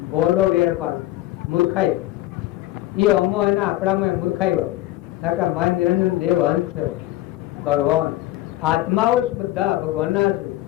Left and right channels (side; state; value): right; quieter; 15.7 dB